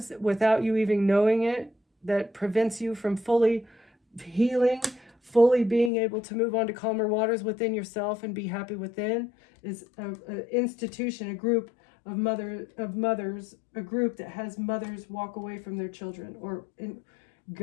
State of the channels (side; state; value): right; drops out; at 5.9 s